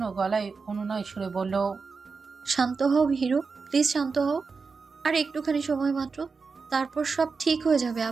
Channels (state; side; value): quieter; left; 4.8 dB